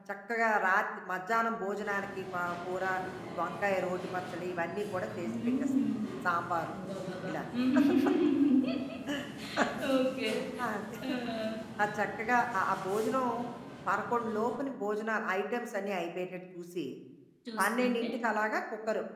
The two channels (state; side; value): identical; both; correlation 1.00